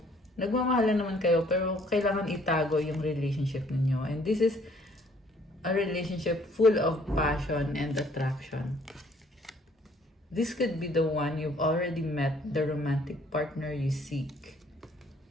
nagmamahalan naman kayo pero kailangan itago yung relationship ninyo. And this is a relationship full of passion and attraction. This could be the one you've already met, the romantic partner you seek.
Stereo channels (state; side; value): normal; both; correlation 0.61